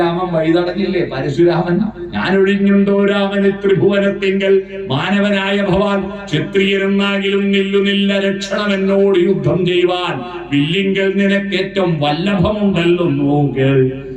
വൈതടഞ്ഞില്ലേ? പരശുരാമൻ ഞാനൊഴിഞ്ഞുണ്ടോ രാമന് ത്രിഭുവനത്തിങ്കൽ മാനവനായ ഭവാൻ ക്ഷത്രിയരെന്നാകിലും നില്ലുനില്ല രക്ഷണം എന്നോട് യുദ്ധം ചെയ്യുവാൻ. വില്ലിങ്കൽ നിനക്കേറ്റവും വല്ലഭമുണ്ടല്ലോ നോക്ക്.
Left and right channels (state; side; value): identical; both; correlation 1.00